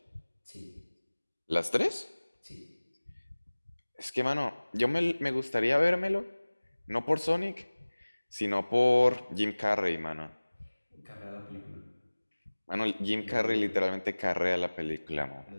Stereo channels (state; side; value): inverted; both; correlation -1.00